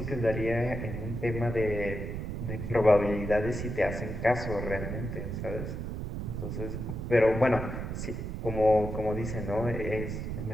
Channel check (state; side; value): noise; right; rumble, 5 dB below the sound